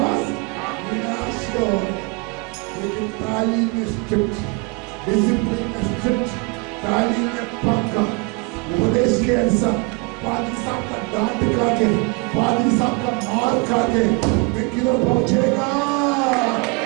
विनाश को, लेकिन तालीम में स्ट्रिक्ट, डिसिप्लिन में स्ट्रिक्ट, तालीम में पक्का, उपदेश के अनुसार पादरी साहब का डांट खा के, पादरी साहब का मार खा के मैं किधर पहुंचेगा?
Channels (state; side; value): quieter; left; 28.7 dB